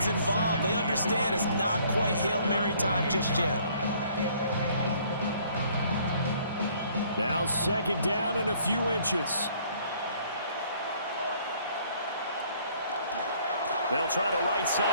involved. They understand it's not quite Hail Mary time just yet. Now second down and a few inches. They'll try the right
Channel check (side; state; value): both; inverted; correlation -0.60